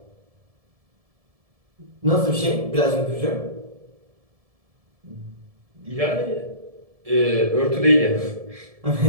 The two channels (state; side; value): late; left; 1.7 ms